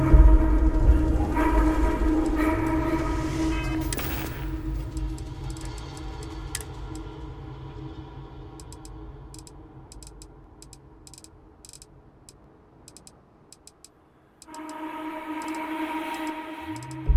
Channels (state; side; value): identical; both; correlation 1.00